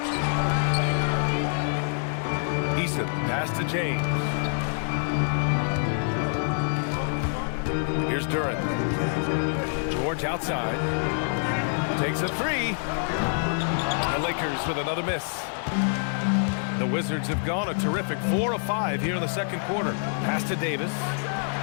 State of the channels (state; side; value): silent; right; digital silence